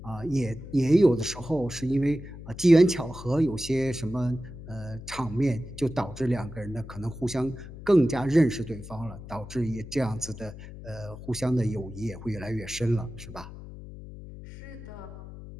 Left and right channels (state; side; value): noise; left; hum, 14 dB below the sound